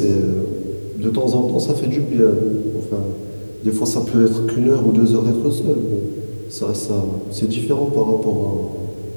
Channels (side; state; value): both; inverted; correlation -1.00